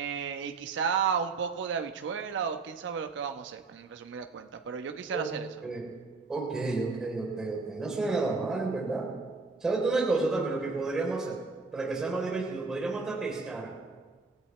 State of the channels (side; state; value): left; quieter; 4.0 dB